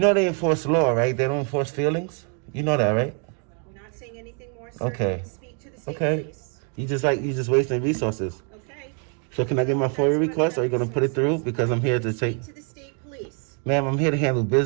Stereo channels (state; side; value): quieter; left; 39.9 dB